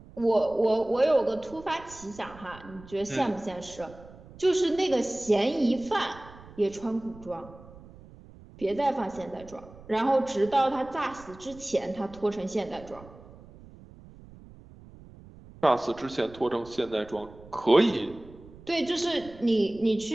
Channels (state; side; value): noise; right; rumble, 20 dB below the sound